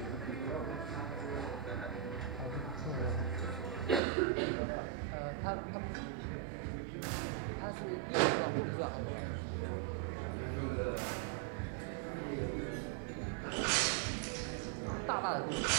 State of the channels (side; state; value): left; drops out; at 4.0 s